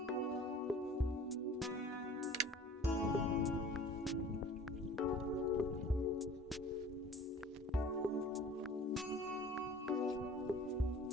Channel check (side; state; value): both; normal; correlation 0.45